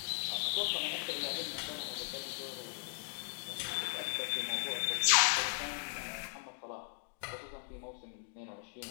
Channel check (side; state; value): right; silent; digital silence